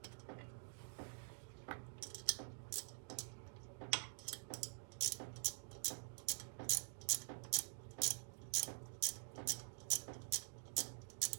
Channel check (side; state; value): left; silent; digital silence